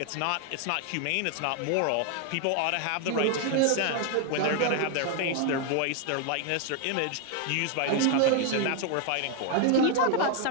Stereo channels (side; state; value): both; different; correlation 0.01